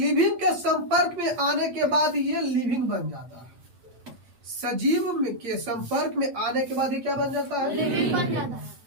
के संपर्क में आने के बाद ये लिविंग बन जाता है। सजीव के संपर्क में आने के बाद ये क्या बन जाता है? लिविंग बन जाता है।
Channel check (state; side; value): late; left; 8.6 ms